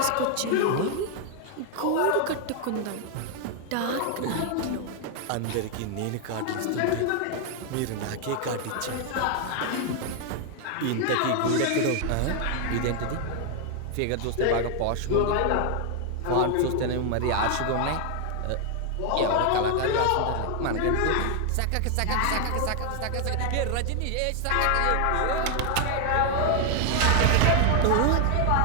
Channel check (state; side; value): different; both; correlation 0.00